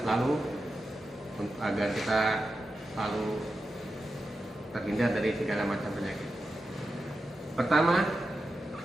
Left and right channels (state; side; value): normal; both; correlation 0.90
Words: selalu agar kita selalu terhindar dari segala macam penyakit. Pertama